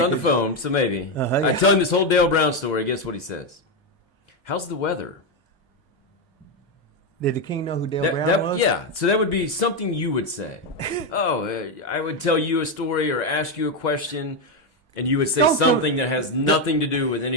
on the phone, so maybe. I tell him this whole Dale Brown story. Guess what he says? How's the weather? Did the king know who Dale Brown was? Yeah, so that would be something you would say. I would tell you a story or ask you a question, and you would say something that has nothing to do with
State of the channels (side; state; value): both; normal; correlation 0.07